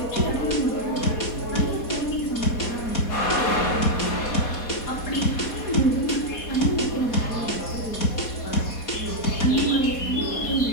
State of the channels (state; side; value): late; right; 4.2 ms